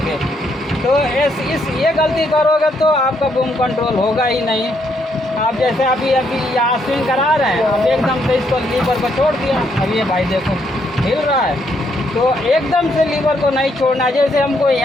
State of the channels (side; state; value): both; normal; correlation 0.74